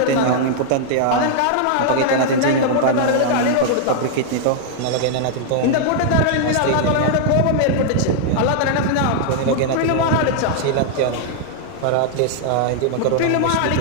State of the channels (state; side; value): different; both; correlation -0.01